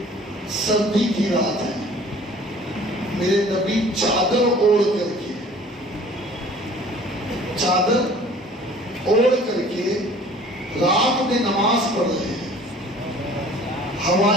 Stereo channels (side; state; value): both; normal; correlation 0.50